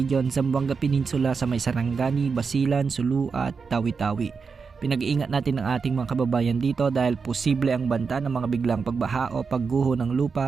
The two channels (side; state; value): left; quieter; 5.3 dB